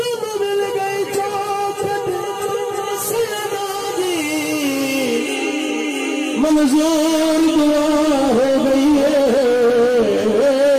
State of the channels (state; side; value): identical; both; correlation 1.00